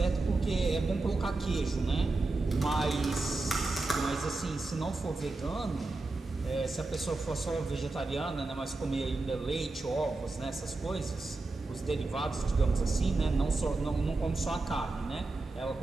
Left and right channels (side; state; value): left; quieter; 3.3 dB